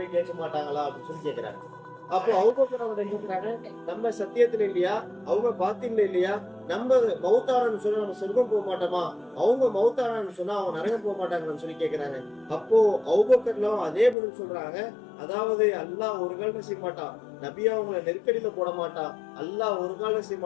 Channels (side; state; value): right; drops out; at 14.2 s